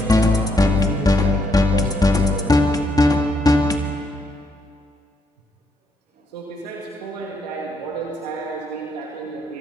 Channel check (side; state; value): both; normal; correlation 0.75